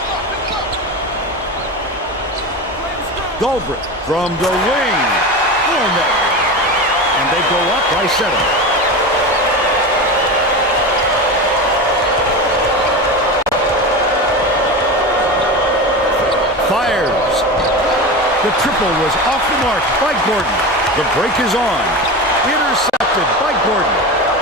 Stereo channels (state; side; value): normal; both; correlation 0.25